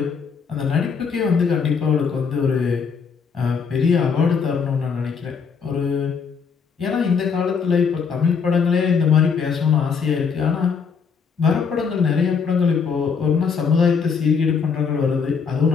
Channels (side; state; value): right; quieter; 5.9 dB